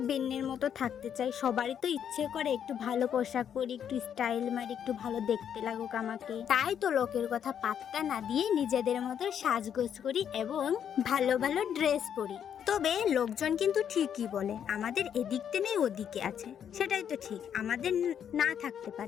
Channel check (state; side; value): quieter; right; 8.7 dB